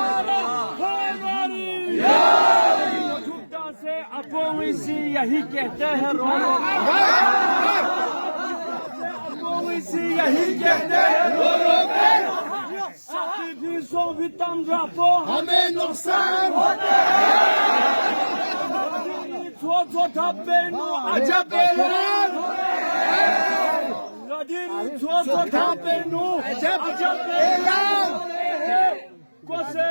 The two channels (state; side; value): inverted; both; correlation -1.00